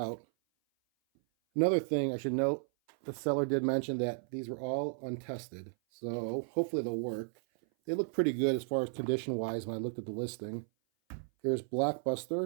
Another thing I should note, the seller did mention that these were all untested, so hopefully they'll work. They look pretty good as far as condition-wise when I looked at the listing. Here's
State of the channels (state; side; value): silent; left; 55 dB below the other